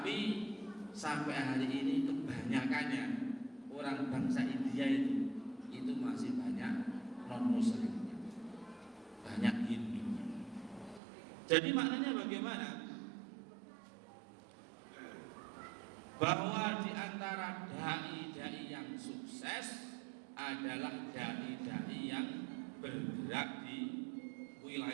sampai hari ini kebanyakannya orang bangsa India itu masih banyak non-muslim, banyak Hindu. Jadi maknanya bagaimana? Bahwa di antara dai-dai yang sukses adalah dai-dai yang bergerak di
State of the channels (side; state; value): left; drops out; at 11.0 s